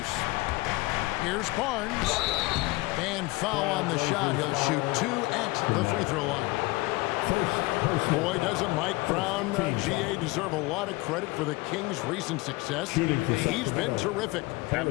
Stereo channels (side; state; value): right; quieter; 22.4 dB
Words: Here's Barnes. And foul on the shot. He'll shoot 2 at the free throw line. Boy, doesn't Mike Brown, GA, deserve a lot of credit for the Kings' recent success. He's been terrific. I